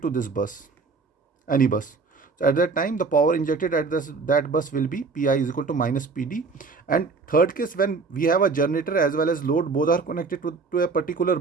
to this bus, any bus, so at that time the power injected at that bus will be Pi is equal to minus Pd. And third case, when we have a generator as well as load, both are connected to a particular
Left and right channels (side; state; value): left; quieter; 4.4 dB